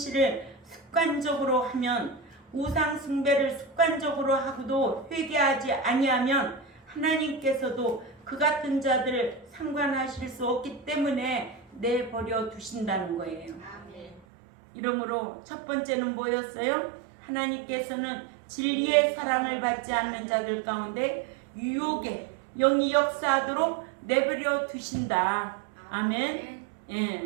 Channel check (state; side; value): drops out; left; at 14.2 s